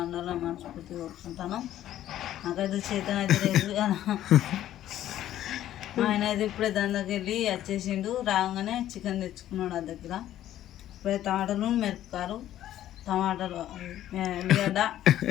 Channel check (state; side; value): quieter; right; 12.5 dB